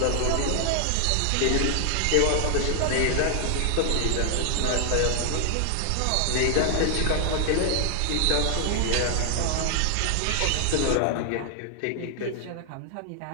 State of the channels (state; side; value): different; both; correlation 0.00